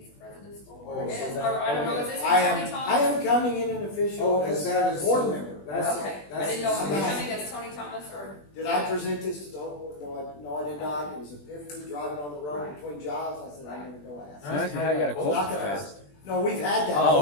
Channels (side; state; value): right; late; 20 ms